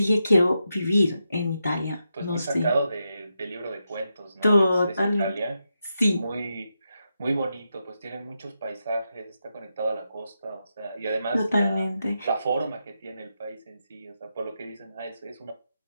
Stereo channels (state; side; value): inverted; both; correlation -0.86